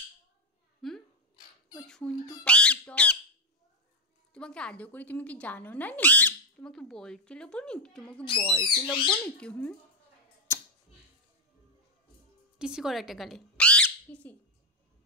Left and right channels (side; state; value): both; normal; correlation 0.01